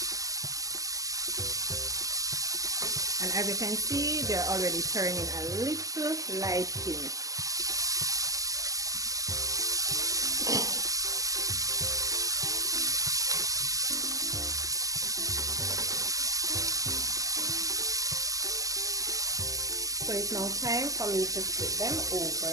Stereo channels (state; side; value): late; left; 0.17 ms